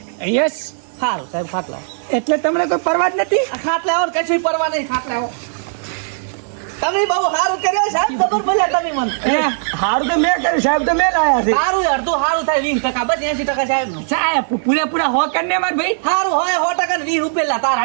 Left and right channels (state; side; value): silent; left; digital silence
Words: યસ. સારું સાહેબ ખાટલા એટલે તમને કોઈ પરવા જ નથી. ખાટલા આવો કશું પરવા નહીં ખાટલા આવો તમે બહુ સારું કર્યો સાહેબ ખબર પડ્યા તમે મને હારું તો મેં કર્યું સાહેબ તો મેં લાયા છે. સારું અડધું સારું થાય 20% બસ 80% સાહેબ નું સાહેબ પૂરેપૂરા હો કરીને માર ભાઈ. સારું હોય 100% ને 20 રૂપિયા તારા